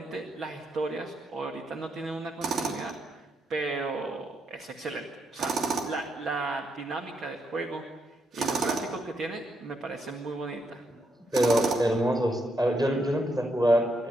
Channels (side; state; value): both; normal; correlation 0.79